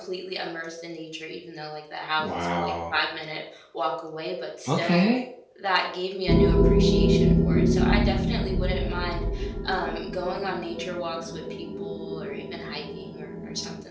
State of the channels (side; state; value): both; identical; correlation 1.00